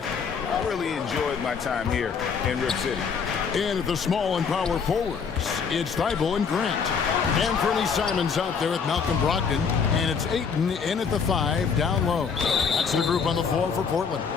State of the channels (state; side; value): quieter; right; 6.1 dB